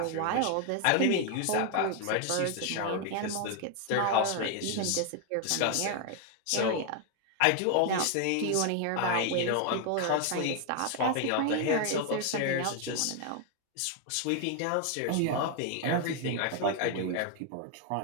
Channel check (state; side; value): different; both; correlation 0.00